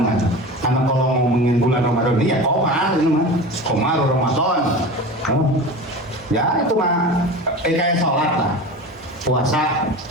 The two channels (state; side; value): normal; both; correlation 0.32